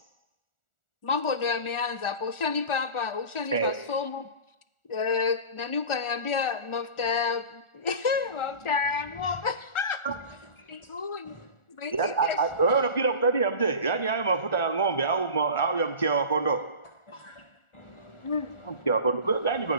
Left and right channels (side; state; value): right; late; 1.4 ms